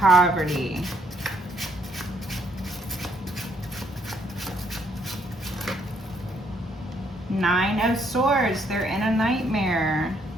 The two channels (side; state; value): both; normal; correlation 0.70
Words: Nine of Swords. They're in a nightmare.